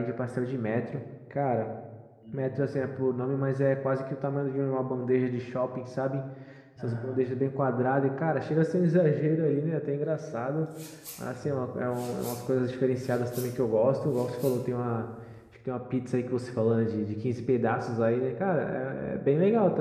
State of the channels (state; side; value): identical; both; correlation 1.00